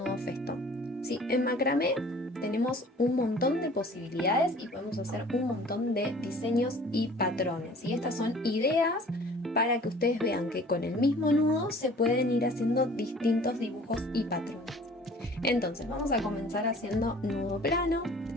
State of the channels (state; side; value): normal; both; correlation 0.49